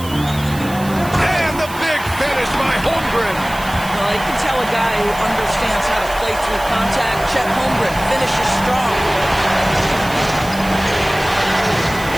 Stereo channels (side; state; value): right; noise; hiss, 15 dB below the sound